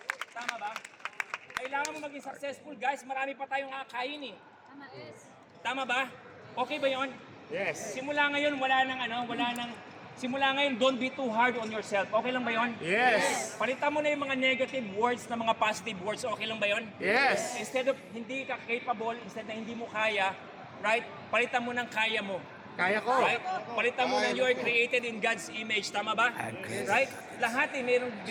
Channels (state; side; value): identical; both; correlation 1.00